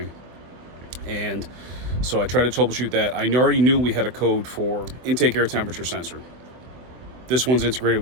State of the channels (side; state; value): left; late; 24 ms